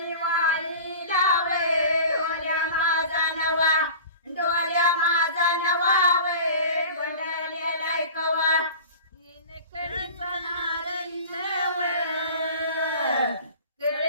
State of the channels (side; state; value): both; inverted; correlation -0.38